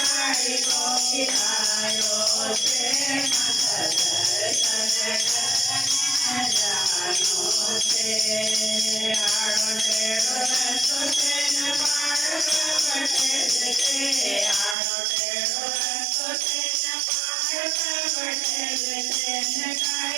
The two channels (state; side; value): drops out; left; at 14.8 s